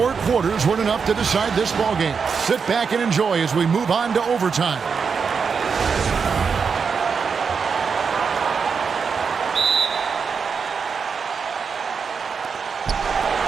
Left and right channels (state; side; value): quieter; left; 5.8 dB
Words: quarters weren't enough to decide this ballgame. Sit back and enjoy as we move on to overtime.